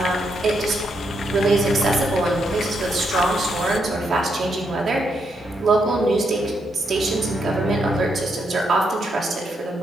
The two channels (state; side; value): normal; both; correlation 0.79